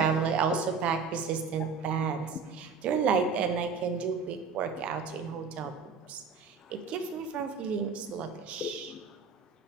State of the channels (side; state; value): left; quieter; 5.3 dB